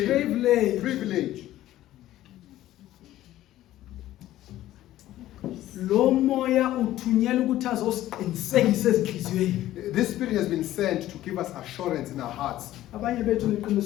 Privilege. Lo moya uthunyelwe ukuthi azosiqinisekisa ezinhliziyweni. This spirit has been sent to give us assurance in our hearts. Abanye bethu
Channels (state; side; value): quieter; right; 14.2 dB